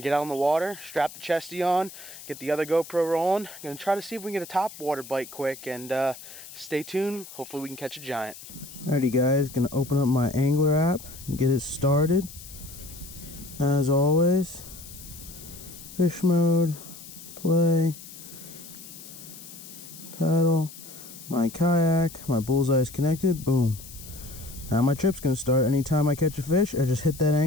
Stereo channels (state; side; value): noise; left; hiss, 16 dB below the sound